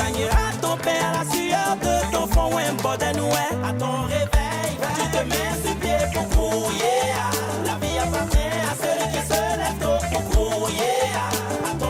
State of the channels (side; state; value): both; identical; correlation 1.00